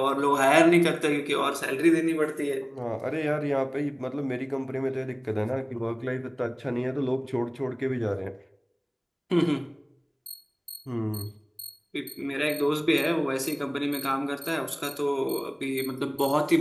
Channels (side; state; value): both; identical; correlation 1.00